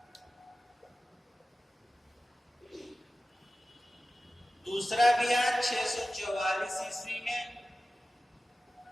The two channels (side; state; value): both; normal; correlation 0.95